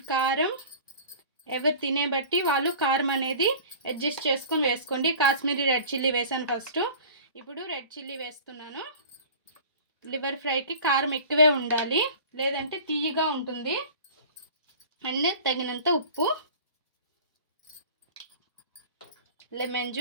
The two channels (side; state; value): both; inverted; correlation -0.40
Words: కారం. ఎవరు తినే బట్టి వాళ్ళు కారం అనేది అడ్జస్ట్ చేసుకొని వేసుకోండి. కాశ్మీరీ రెడ్ చిల్లీ వేసాను ఫస్ట్, ఇప్పుడు రెడ్ చిల్లీ వేస్తున్నాను. లివర్ ఫ్రైకి కారం ఎక్కువే ఉండాలి, లేదంటే తీయగా ఉంటుంది. అండ్ తగినంత ఉప్పు, లెమన్